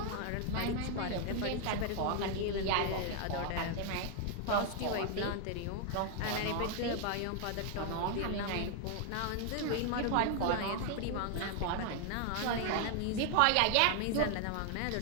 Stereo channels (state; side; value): different; both; correlation 0.00